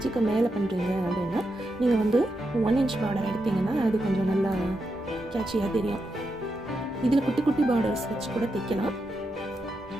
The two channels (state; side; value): normal; both; correlation 0.85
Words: மேலே பண்ணுறீங்க அப்படின்னா நீங்கள் வந்து 1 இன்ச் பார்டர் எடுத்தீங்கன்னா அது கொஞ்சம் நல்லா கேட்சியாக தெரியும். இதில் குட்டி குட்டி பார்டர்ஸ் வச்சு கூட தைக்கலாம்.